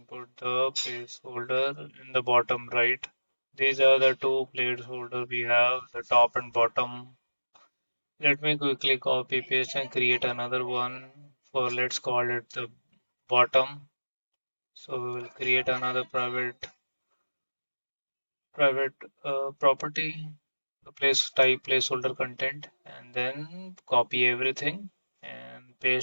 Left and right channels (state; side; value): inverted; both; correlation -1.00